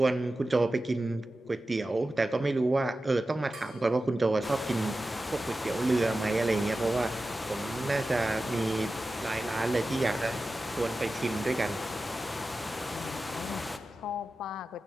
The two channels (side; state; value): both; normal; correlation 0.94